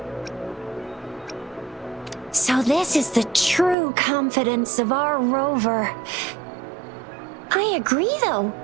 So this is the true confidence of our rover. I agree though.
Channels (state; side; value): drops out; left; at 3.8 s